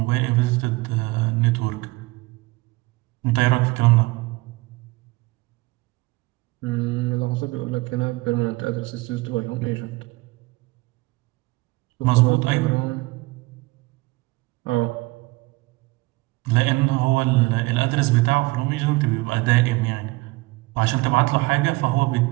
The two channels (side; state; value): left; quieter; 22.6 dB